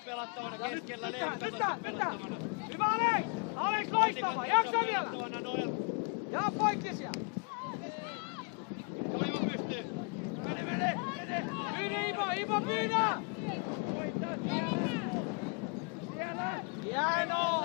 pelattavana keskellä, Leevi katsot pelattavana. Hyvä Alex! Alex Onni loistava! katsot Jaksa vielä! pelattavana, Noel. Ja poikki siellä! Oiva pystyy. Mene! Ivo pyydä! Voittaa siellä! Hienoa!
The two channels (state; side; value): quieter; right; 36.2 dB